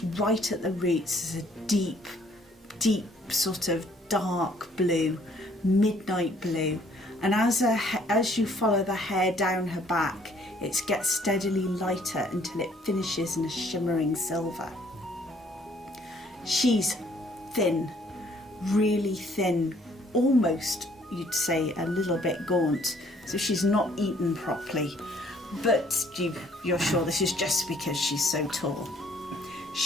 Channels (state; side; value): normal; both; correlation 0.62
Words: right at the roots as a deep, deep sort of dark blue, midnight blue, and as you follow the hair down her back, it gets steadily lighter until it finishes in a shimmering silver. She's thin, really thin, almost, you'd say, a little bit gaunt, so she's not eaten properly, but you're sure this is just because she's so tall.